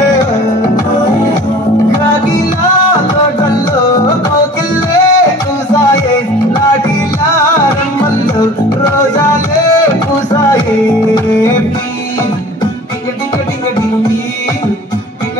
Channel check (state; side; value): normal; both; correlation 0.44